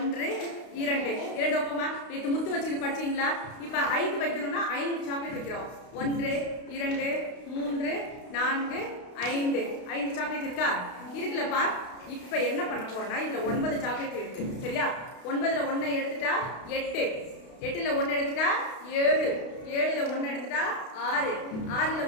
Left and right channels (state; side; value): late; right; 32 ms